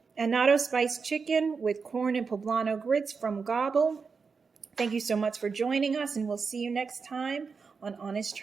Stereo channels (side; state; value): left; quieter; 5.2 dB